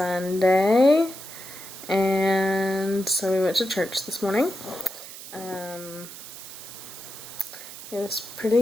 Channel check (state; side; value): noise; right; hiss, 13 dB below the sound